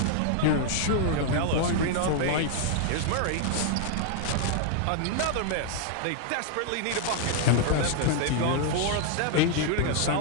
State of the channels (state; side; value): different; both; correlation 0.00